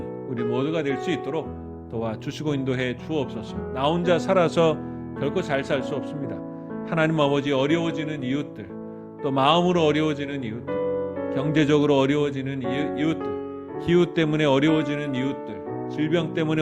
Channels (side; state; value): both; identical; correlation 1.00